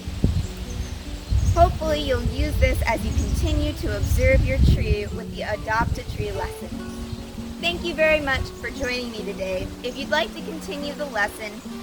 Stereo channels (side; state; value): both; identical; correlation 1.00